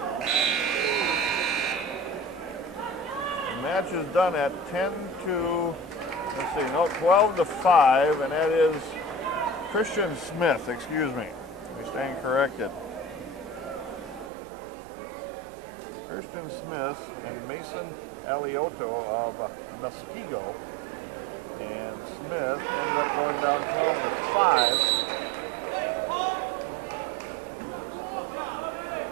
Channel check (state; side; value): drops out; left; at 14.3 s